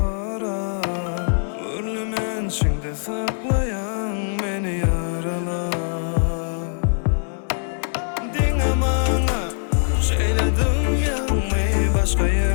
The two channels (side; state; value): right; silent; 64 dB below the other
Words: Urlumen içinde saklayan meni yaralar. Dinle bana şeyledim yanmayı, başka